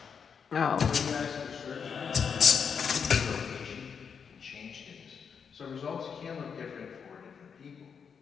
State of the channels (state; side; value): quieter; right; 6.6 dB